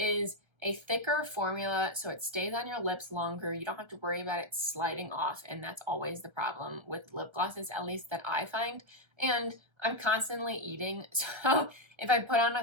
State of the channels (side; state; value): left; late; 1.3 ms